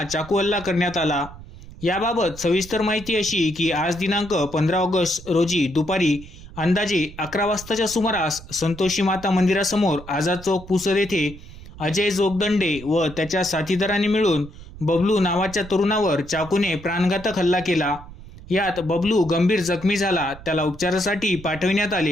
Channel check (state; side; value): noise; right; rumble, 17 dB below the sound